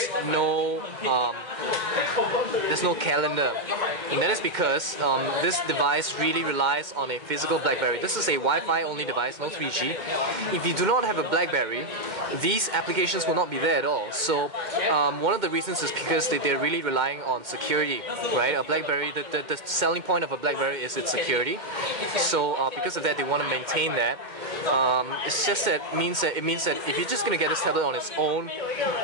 no there's no calendar, and that is because this device really relies on a physical BlackBerry. This is a Wi-Fi only device, no 3G. If you do not have a BlackBerry, these applications will not be there at all. So one of the reasons is because they're really relying on security, right? A BlackBerry, the selling point of a BlackBerry is its security. So because of that, they want to maintain that. It's just that it means that if you're just going to get this tablet on its own,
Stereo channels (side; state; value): left; late; 2.1 ms